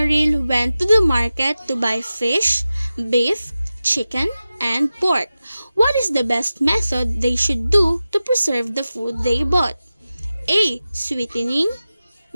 went to the market to buy fish, beef, chicken, and pork. What is the best method they should do to preserve the food they bought? A. Sweetening,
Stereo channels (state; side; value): inverted; both; correlation -0.95